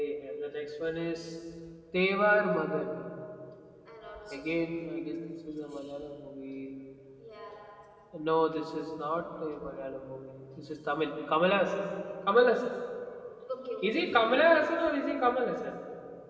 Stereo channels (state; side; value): identical; both; correlation 1.00